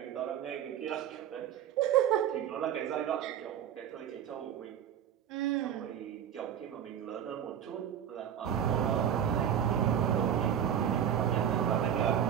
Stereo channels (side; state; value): left; quieter; 9.4 dB